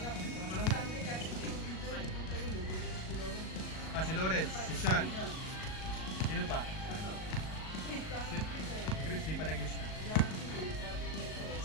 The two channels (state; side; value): late; right; 38 ms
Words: Ah, si Lawrence, si Sean. Sino pa? Si Chris, di pa naglista.